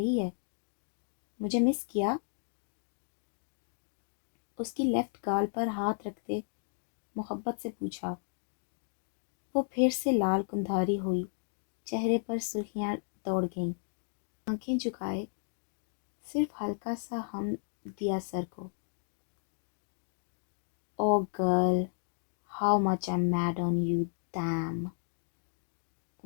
ہے۔ مجھے مس کیا؟ اس کی لیفٹ گال پر ہاتھ رکھتے محبت سے پوچھا۔ وہ پھر سے لال کندھاری ہوئی، چہرے پر سرخیاں دوڑ گئیں، آنکھیں جھکائے صرف ہلکا سا ہم دیا سر کو۔ Oh girl, how much I am mad on you, damn.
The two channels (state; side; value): silent; right; digital silence